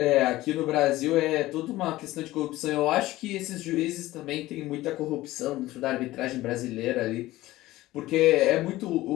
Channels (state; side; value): quieter; right; 17.0 dB